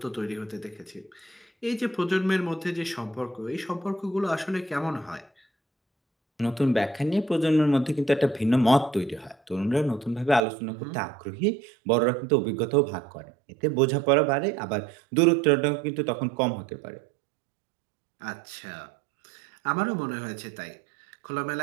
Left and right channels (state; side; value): drops out; left; at 10.4 s